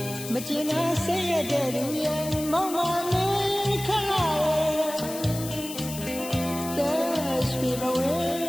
မကျင်နာဆေးရတဲ့သူရဲ့မောင်ပါနေခလာတဲ့ရွှေဘဝ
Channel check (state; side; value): noise; left; hiss, 10 dB below the sound